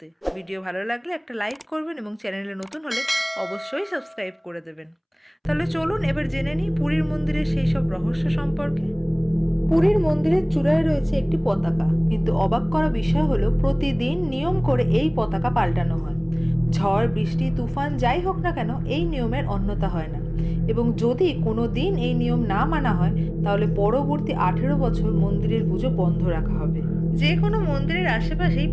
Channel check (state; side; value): identical; both; correlation 1.00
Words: ভিডিও ভালো লাগলে একটা লাইক করবেন এবং চ্যানেলে নতুন হলে অবশ্যই সাবস্ক্রাইব করে দেবেন। তাহলে চলুন এবার জেনে নিই পুরীর মন্দিরের সেই সব রহস্য সম্পর্কে। পুরীর মন্দিরের চূড়ায় রয়েছে একটি পতাকা, কিন্তু অবাক করা বিষয় হলো প্রতিদিন নিয়ম করে এই পতাকা পাল্টানো হয়। ঝড় বৃষ্টি তুফান যাই হোক না কেন, এই নিয়মের অন্যতা হয় না। এবং যদি কোনো দিন এই নিয়ম না মানা হয়, তাহলে পরবর্তী 18 বছর মন্দিরের পুজো বন্ধ রাখা হবে। যে কোনো মন্দিরের আশেপাশেই